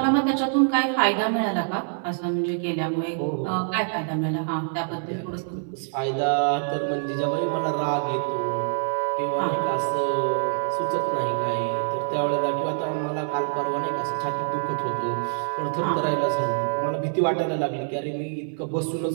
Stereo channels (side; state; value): left; silent; digital silence